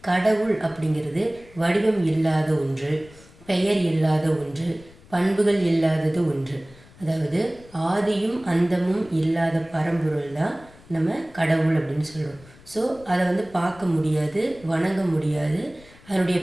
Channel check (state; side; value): noise; left; rumble, 24 dB below the sound